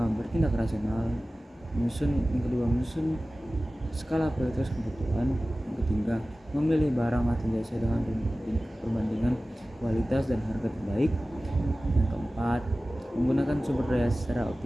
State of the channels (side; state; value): both; normal; correlation 0.96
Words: bertindak rasional, yang kedua, menyusun skala prioritas kebutuhan, yang ketiga, memilih barang atau jasa dengan perbandingan kualitas dan harga terbaik, yang keempat, menggunakan sumber daya secara